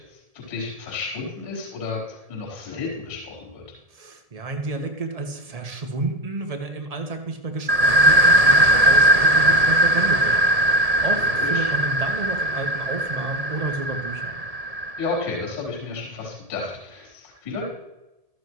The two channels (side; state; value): left; late; 1.7 ms